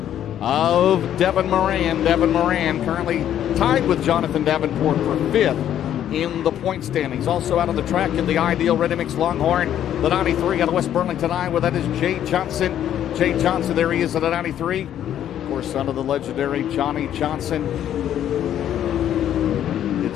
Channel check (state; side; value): quieter; right; 10.7 dB